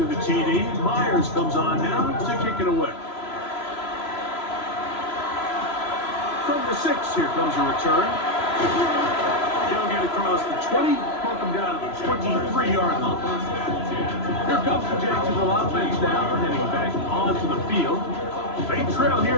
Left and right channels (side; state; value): right; late; 3.0 ms